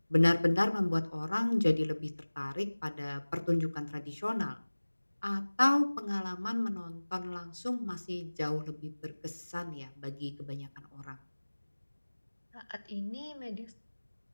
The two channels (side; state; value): both; inverted; correlation -1.00